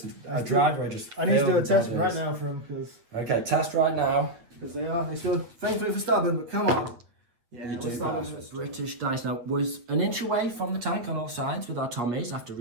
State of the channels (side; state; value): left; late; 8.7 ms